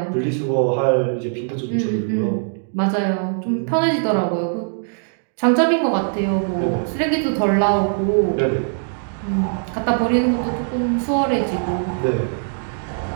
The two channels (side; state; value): left; silent; digital silence